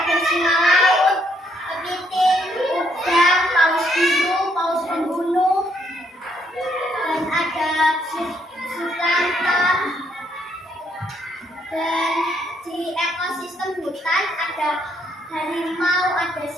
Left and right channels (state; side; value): normal; both; correlation 0.72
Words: singa laut, kepiting, udang, paus biru, paus pembunuh, dan ada sulanta. Dan di ekosistem hutan ada harimau, ada